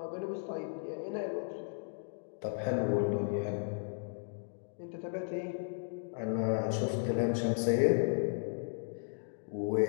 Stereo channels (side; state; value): right; silent; digital silence